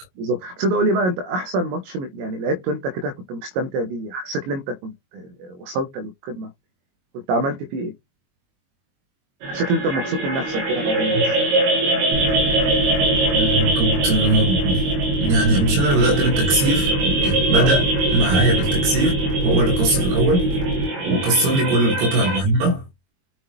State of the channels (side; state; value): left; late; 22 ms